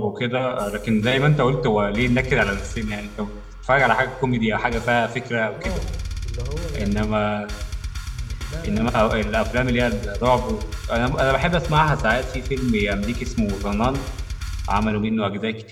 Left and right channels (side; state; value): both; identical; correlation 1.00